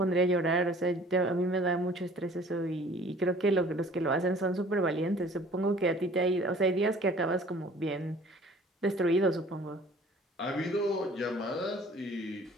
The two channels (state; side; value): normal; both; correlation 0.51